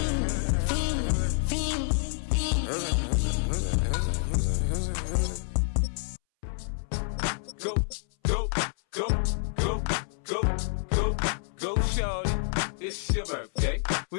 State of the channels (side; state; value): right; silent; 59 dB below the other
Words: Go, go, go, go, go, go, go, shorty. It's your birthday.